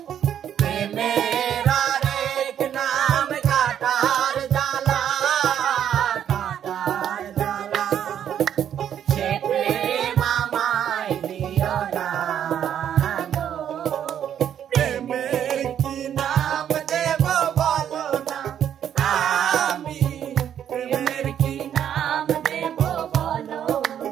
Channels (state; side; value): quieter; left; 9.6 dB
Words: প্রেমের আরেক নাম কাটার জ্বালা, কাটার জ্বালা। সে প্রেম আমায় দিও না গো, প্রেমের কি নাম দেব বলো না, আমি প্রেমের কি নাম দেব বলো